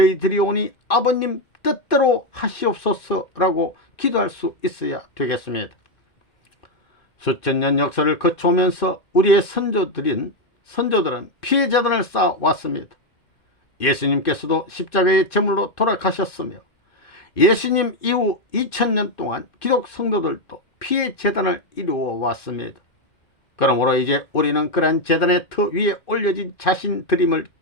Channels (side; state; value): right; late; 2.5 ms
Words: 오니 아버님 뜻대로 하시옵소서 라고 기도할 수 있어야 되겠습니다. 수천 년 역사를 거쳐오면서 우리의 선조들은 피해 재단을 쌓아왔습니다. 예수님께서도 십자가의 제물로 돌아가셨으며 예수님 이후 2000년 동안 기독 성도들도 피해 재단을 이루어 왔습니다. 그러므로 이제 우리는 그러한 재단의 터 위에 올려진 자신들임을